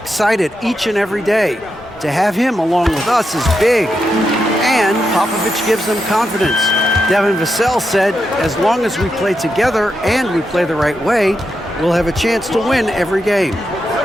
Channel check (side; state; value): both; normal; correlation 0.85